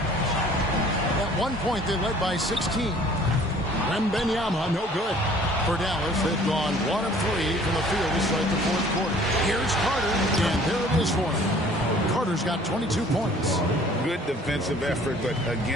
At one point, they led by 16. Wembanyama, no good. For Dallas, they've gone 1 of 3 from the field to start the fourth quarter. Here's Carter, and there it is for him. Carter's got 22 points. Good defensive effort, but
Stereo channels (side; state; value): both; normal; correlation 0.53